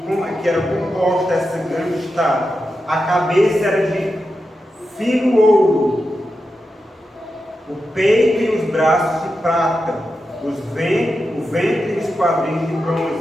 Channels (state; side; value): normal; both; correlation 0.89